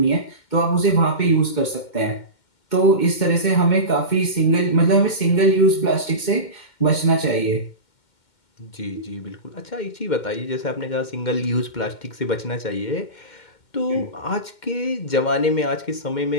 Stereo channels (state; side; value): late; right; 2.1 ms